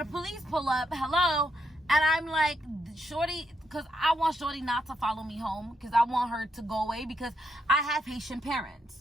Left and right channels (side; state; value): both; normal; correlation 0.79